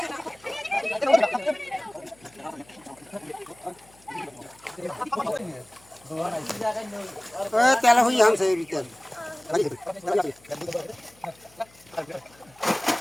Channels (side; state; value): left; noise; hum, 28 dB below the sound